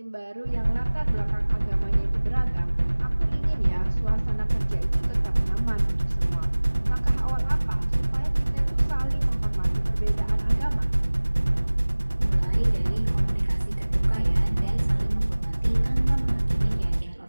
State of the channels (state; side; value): inverted; both; correlation -1.00